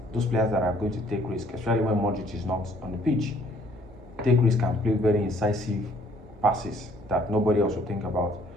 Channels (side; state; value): both; normal; correlation 0.61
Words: those players that are going to take risk, especially when Madrid is not on the pitch. Take risk and play very incisive passes that nobody else will think about.